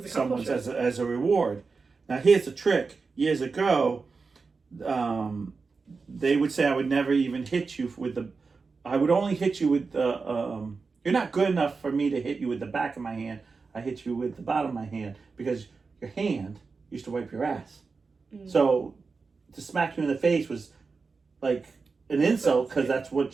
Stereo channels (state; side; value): quieter; left; 4.5 dB